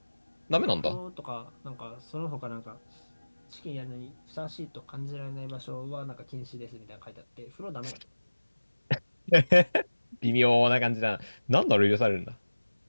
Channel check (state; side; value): inverted; both; correlation -1.00